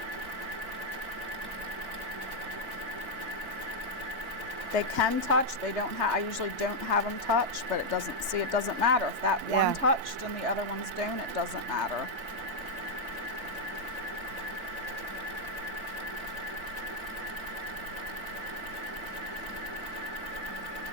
They can touch. They don't have. I usually don't have them touch, but it doesn't. See, it doesn't matter if that one touched and the other ones don't. It doesn't matter.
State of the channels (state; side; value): late; left; 4.5 ms